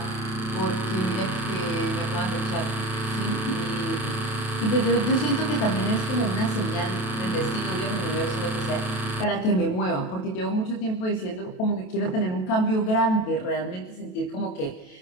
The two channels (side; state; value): right; late; 27 ms